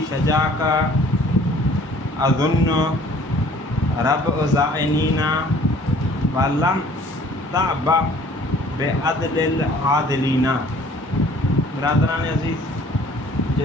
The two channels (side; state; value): both; normal; correlation 0.54